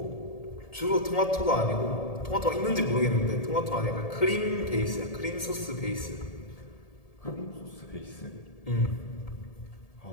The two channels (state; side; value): late; right; 1.7 ms